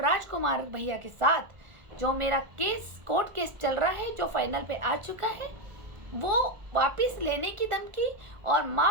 भैया के साथ जो मेरा केस, कोर्ट केस चल रहा है, जो फाइनल पे आ चुका है, वो वापस लेने की धमकी और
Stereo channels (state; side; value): late; left; 1.5 ms